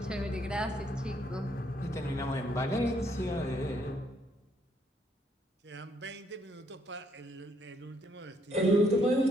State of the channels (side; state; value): both; normal; correlation 0.70